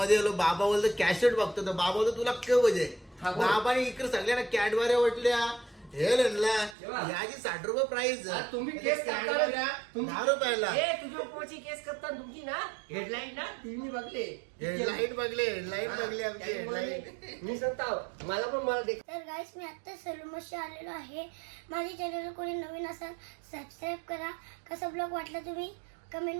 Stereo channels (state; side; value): drops out; left; at 6.8 s